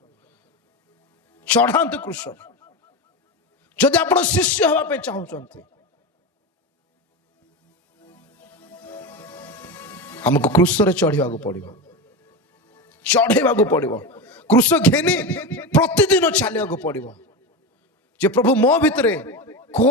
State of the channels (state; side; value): normal; both; correlation 0.20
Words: चढ़ातु क्रूस। जदि आप शिष्य हवा पे चाहते हमको क्रूस रे चढ़ा पड़ो, चढ़ेवा पड़ो। क्रूस घेनी प्रतिदिन चलिया पड़ो जे प्रभु मो भितरे